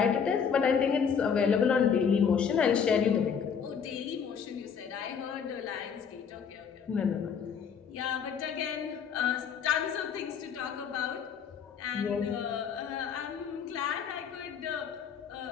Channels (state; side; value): quieter; right; 6.9 dB